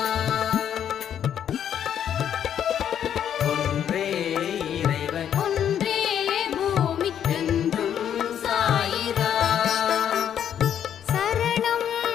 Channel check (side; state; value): right; quieter; 9.4 dB